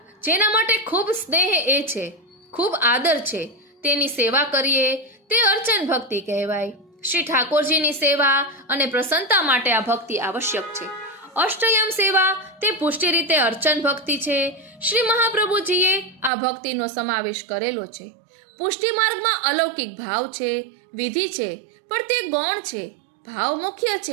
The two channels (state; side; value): drops out; left; at 16.3 s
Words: જેના માટે ખૂબ સ્નેહ એ છે, ખૂબ આદર છે, તેની સેવા કરીએ તે અર્ચન ભક્તિ કહેવાય. શ્રી ઠાકોરજીની સેવા અને પ્રસન્નતા માટે આ ભક્તિ આવશ્યક છે. અષ્ટયમ સેવા તે પુષ્ટિ રીતે અર્ચન ભક્તિ છે. શ્રી મહાપ્રભુજીએ આ ભક્તિનો સમાવેશ કરેલો છે. પુષ્ટિ માર્ગમાં અલૌકિક ભાવ છે, વિધિ છે, પણ તે ગૌણ છે. ભાવ મુખ્ય